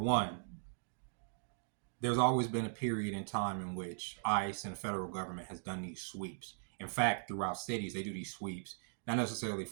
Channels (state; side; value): silent; left; digital silence